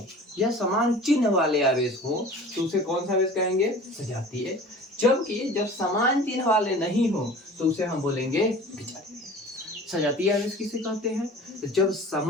या समान चिन्ह वाले आवेश हों तो उसे कौन सा आवेश कहेंगे? सजातीय। जबकि जब समान चिन्ह वाले नहीं हो तो उसे हम बोलेंगे विजातीय। सजातीय आवेश किसे कहते हैं? जब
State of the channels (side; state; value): both; normal; correlation 0.42